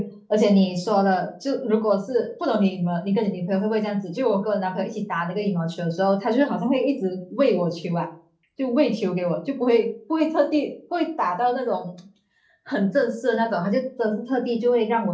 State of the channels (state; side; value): identical; both; correlation 1.00